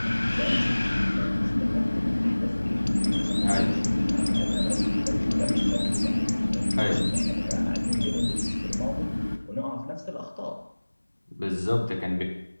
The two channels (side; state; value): both; inverted; correlation -1.00